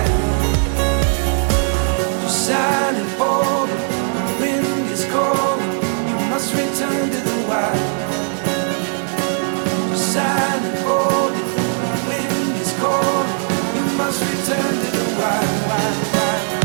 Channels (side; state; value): left; silent; digital silence